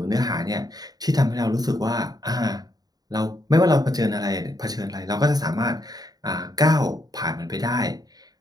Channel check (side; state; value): left; late; 0.19 ms